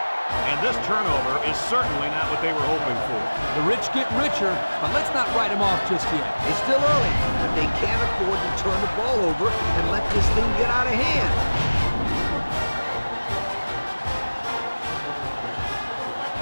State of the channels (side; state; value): both; inverted; correlation -1.00